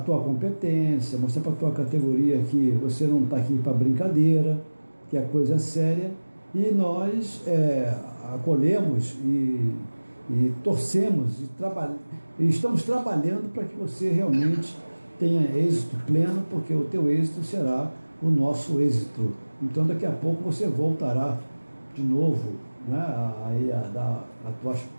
competência, mostrar para a tua categoria que você não está aqui para brincadeira, que a coisa é séria, e nós acolhemos e torcemos e estamos trabalhando para que você realmente tenha êxito pleno, porque o teu êxito será o nosso êxito. Então daqui a pouco você voltará de novo, né, a dar a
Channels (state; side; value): inverted; both; correlation -1.00